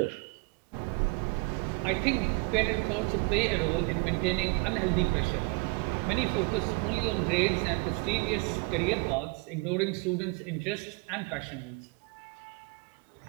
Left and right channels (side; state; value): left; quieter; 31.1 dB